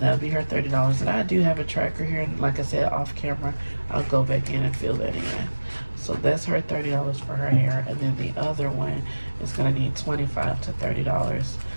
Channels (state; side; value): inverted; both; correlation -1.00